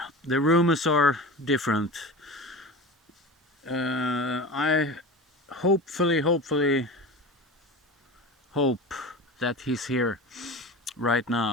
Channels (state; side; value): normal; both; correlation 0.32